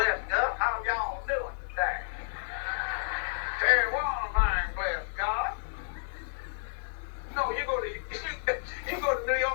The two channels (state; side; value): silent; right; digital silence